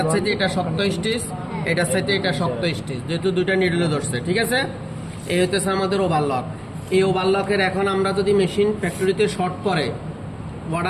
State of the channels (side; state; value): both; identical; correlation 1.00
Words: সাথে এটা শক্ত স্টিচ, এটার সাথে এটা শক্ত স্টিচ, যেহেতু 2টা নিডেলে ধরছে, ঠিক আছে। এই হইতেছে আমাদের ওভারলক। এই ওভারলকের এখন আমরা যদি মেশিন ফ্যাক্টরিতে শর্ট করে,